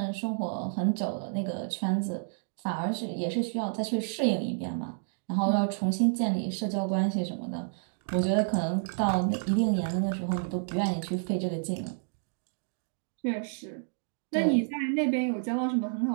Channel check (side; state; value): left; silent; digital silence